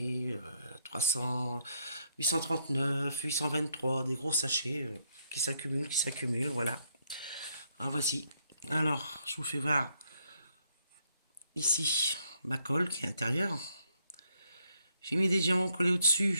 300, 839, 823, des gros sachets qui s'accumulent. Voilà. Ah, voici. Alors, je vous fais voir ici ma colle qui est intérieure. J'ai mis des diamants collés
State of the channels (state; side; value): inverted; both; correlation -0.73